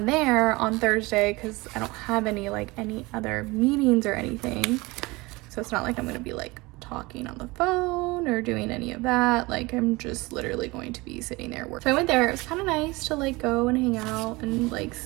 there on Thursday because I don't have any other meetings or anything. So it's not like I'm going to be like talking on the phone or doing any of that. Like I'm just literally going to be sitting there working. So I went there. It was kind of nice to like go and hang out and like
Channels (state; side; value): quieter; left; 23.0 dB